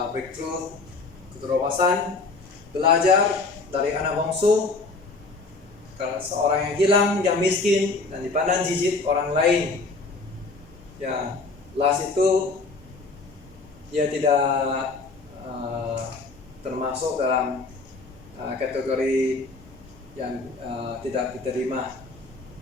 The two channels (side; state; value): right; quieter; 3.7 dB